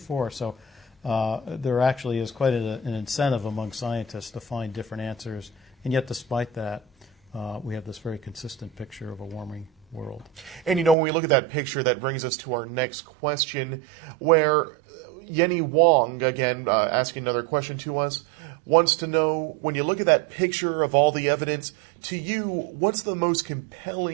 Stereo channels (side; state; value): left; drops out; at 11.0 s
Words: So there actually is quite an incentive among scientists to find different answers. And yet despite that, we have this very consistent picture of a warming world. And when we look at that picture, that brings us to our next question, where Yenny Wong, again, asking another question to us, wants to know, when you look at that picture of all the evidence, to you, what's the most